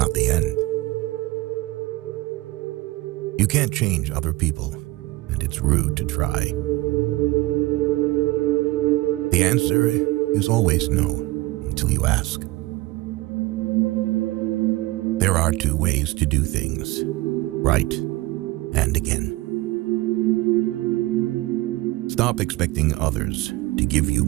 the end. You can't change other people, and it's rude to try. The answer is always no, until you ask. There are two ways to do things, right and again. Stop expecting others to give you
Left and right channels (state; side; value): quieter; left; 19.8 dB